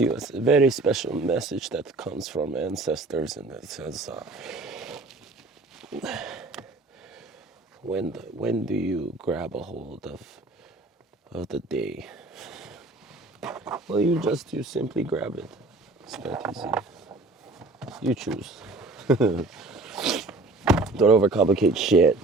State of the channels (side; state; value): left; quieter; 3.2 dB